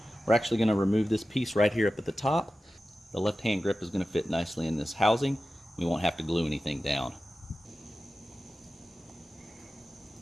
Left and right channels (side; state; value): both; normal; correlation 0.94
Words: We're actually gonna remove this piece right here up at the top. The left hand grip is gonna fit nicely in this housing. We won't have to glue anything down.